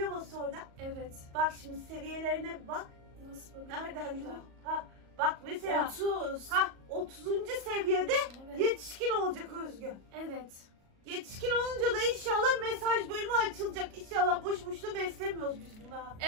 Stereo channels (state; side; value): late; left; 37 ms